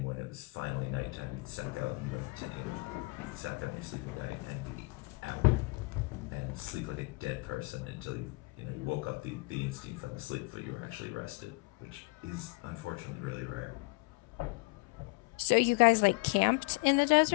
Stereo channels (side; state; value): right; quieter; 27.0 dB